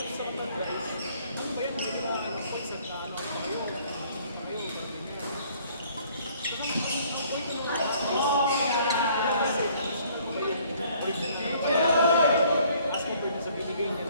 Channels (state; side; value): inverted; both; correlation -0.59